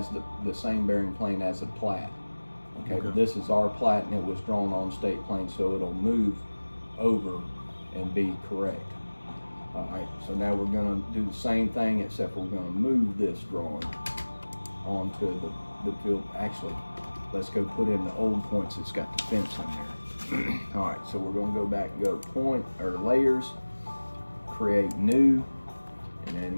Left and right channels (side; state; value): both; inverted; correlation -1.00